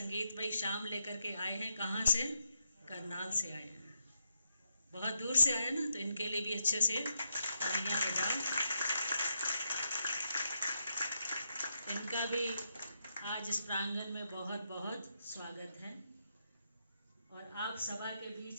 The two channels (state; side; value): inverted; both; correlation -0.82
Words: शाम लेकर के आए हैं। कहाँ से? करनाल से आए हैं, बहुत दूर से आए ना। तो इनके लिए भी अच्छे से तालियां बजाओ। इनका भी आज इस प्रांगण में बहुत बहुत स्वागत है। और आप सभा के